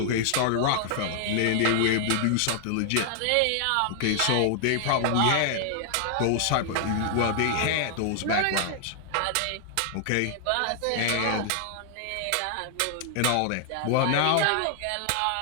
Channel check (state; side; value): different; both; correlation 0.00